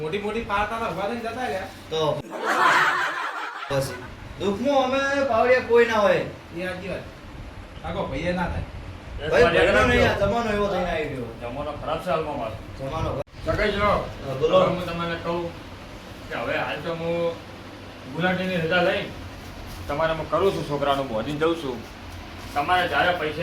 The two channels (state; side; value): identical; both; correlation 1.00